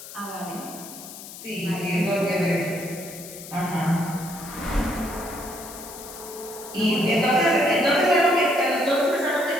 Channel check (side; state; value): left; noise; hiss, 14 dB below the sound